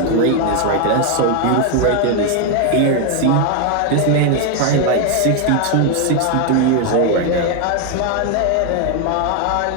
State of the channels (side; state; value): both; different; correlation 0.01